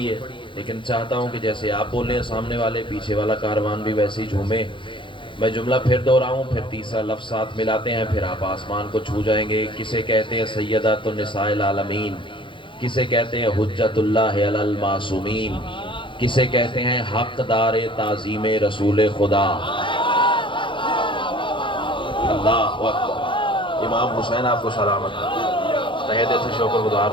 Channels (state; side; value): late; right; 0.24 ms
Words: ہے، لیکن چاہتا ہوں کہ جیسے آپ بولیں سامنے والے، پیچھے والا کاروان بھی ویسے ہی جھومے۔ میں جملہ پھر دہراؤں، پھر تیسرا لفظ ساتھ ملاتے ہیں، پھر آپ آسمان کو چھو جائیں گے۔ کسے کہتے ہیں سیدۃ النساء العالمین، کسے کہتے ہیں حجت اللہ علی المعصومین، کسے کہتے ہیں حقدار تعظیم رسول خدا۔ اللہ اکبر۔ امام حسین آپ کو سلامت، تہہ دل سے شکر گزار